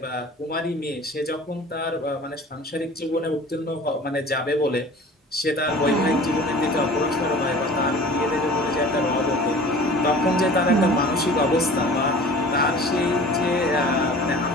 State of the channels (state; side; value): normal; both; correlation 0.43